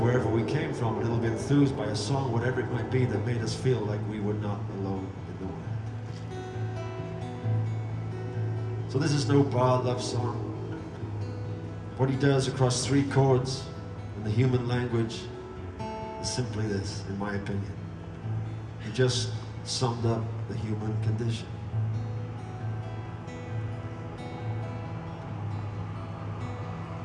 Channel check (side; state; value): both; identical; correlation 1.00